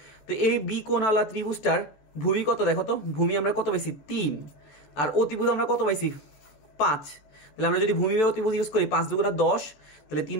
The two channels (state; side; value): late; right; 14 ms